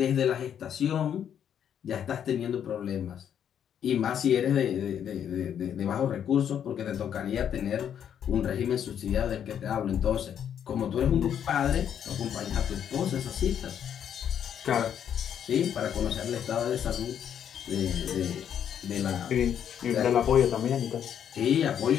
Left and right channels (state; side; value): quieter; right; 9.0 dB